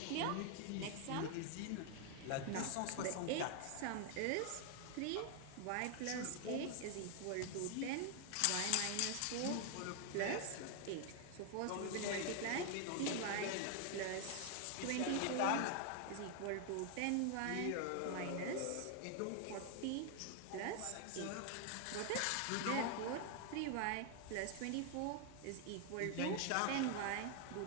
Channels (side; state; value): both; different; correlation 0.00